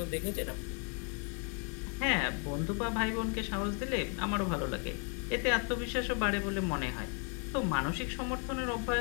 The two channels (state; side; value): quieter; right; 39.9 dB